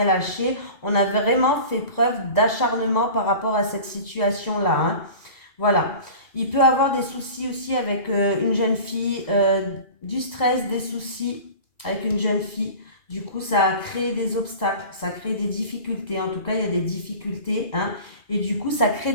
lâché. On a vraiment fait preuve d'acharnement par rapport à cette situation-là, hein. Voilà. Il peut avoir des soucis aussi avec une jeune fille, du stress, des soucis avec une jeune fille. Du coup, ça a créé des obstacles, ça crée des difficultés. En tout cas, il y a des difficultés, hein. Et du coup, ça crée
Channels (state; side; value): late; right; 2.4 ms